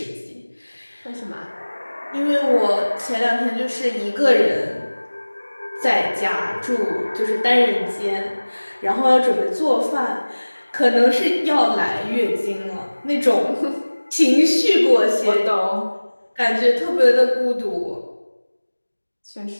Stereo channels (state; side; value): inverted; both; correlation -1.00